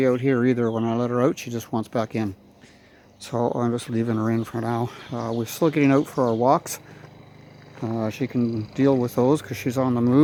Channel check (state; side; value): identical; both; correlation 1.00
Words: out here either. When I let her out, she just wants back in. So I'm just leaving her in for now. We're still getting out for our walks. She can deal with those because she's on the